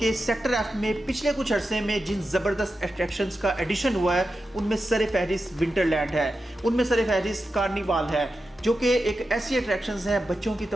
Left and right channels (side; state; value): both; normal; correlation 0.90